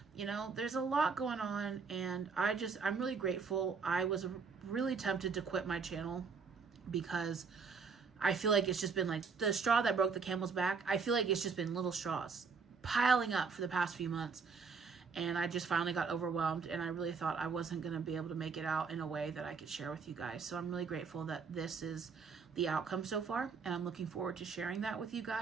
You know, there's a lot going on, and I'm really grateful. I was really tempted to quit my channel because I feel like it's just been like the straw that broke the camel's back. I feel like it's just been little straws piling up for the past few months. And I just finally got overwhelmed, and I really thought I wasn't going to be able to make it out in a way that I could share with you guys. So I'm really grateful that this is the outcome so far, and I'm looking forward to sharing that with you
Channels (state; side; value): quieter; left; 5.3 dB